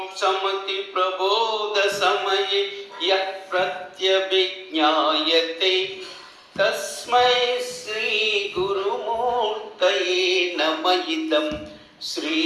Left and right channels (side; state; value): both; identical; correlation 1.00